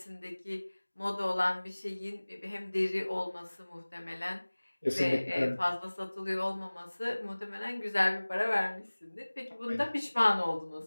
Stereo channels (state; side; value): inverted; both; correlation -1.00